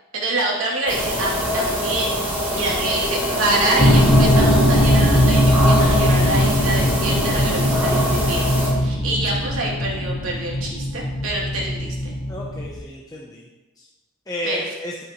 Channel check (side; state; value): both; normal; correlation 0.57